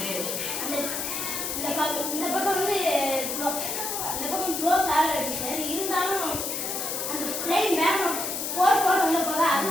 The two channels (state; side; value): noise; left; hiss, 3 dB below the sound